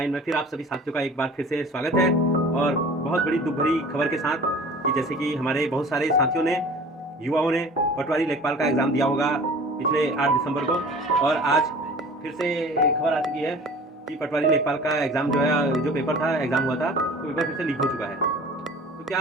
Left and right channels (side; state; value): both; normal; correlation 0.43